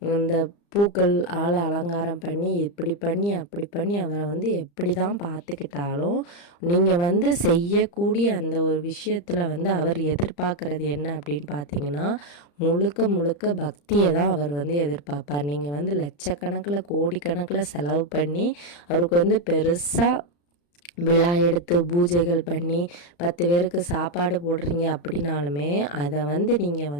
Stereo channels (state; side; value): late; right; 35 ms